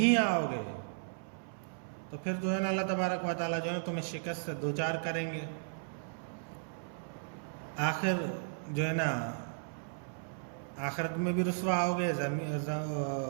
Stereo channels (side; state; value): left; silent; 54 dB below the other